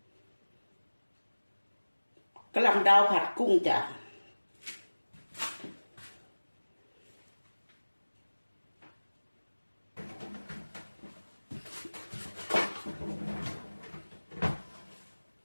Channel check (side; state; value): both; inverted; correlation -1.00